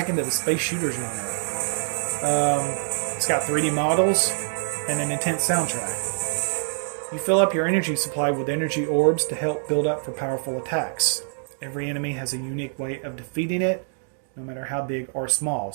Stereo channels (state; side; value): silent; left; digital silence